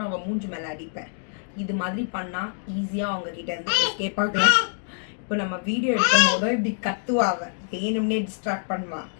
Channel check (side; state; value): right; silent; digital silence